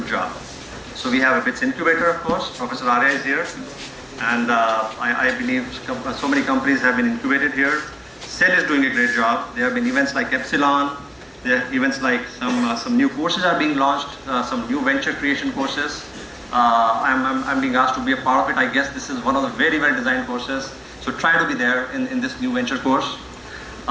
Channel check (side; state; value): both; identical; correlation 1.00